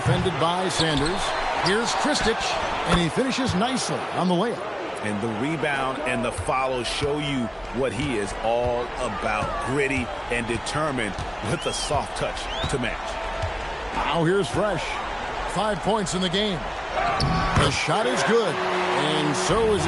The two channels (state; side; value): identical; both; correlation 1.00